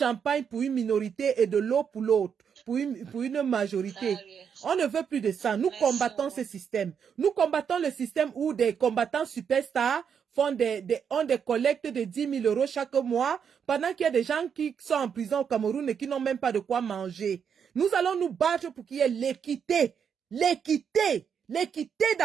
pour une minorité et de l'eau pour l'autre, pour une majorité. On ne veut plus de ça. Nous combattons ce système. Nous combattons le système où des combattants superstars ont des collectes de 10 000 € chaque mois, pendant qu'il y a des gens qui sont en prison au Cameroun et qui n'ont même pas de quoi manger. Nous allons nous battre pour qu'il y ait l'équité. L'équité. L'équité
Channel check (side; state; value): left; quieter; 7.3 dB